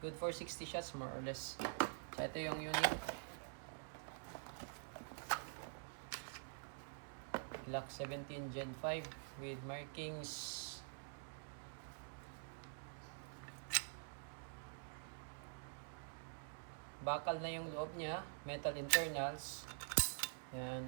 for 60 shots more or less. So ito yung unit. Glock 17 Gen 5 with markings. Bakal na yung loob niya, metal internals.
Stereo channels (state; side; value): silent; left; digital silence